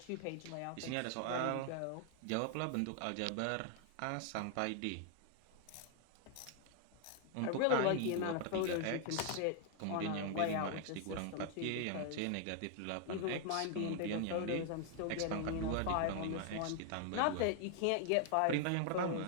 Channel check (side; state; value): both; different; correlation 0.00